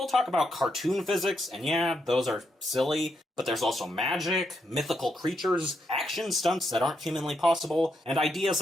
talk about cartoon physics, and yeah, those are silly, but there's also magic, mythical creatures, action stunts that aren't humanly possible, and ideas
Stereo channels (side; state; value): both; normal; correlation 0.80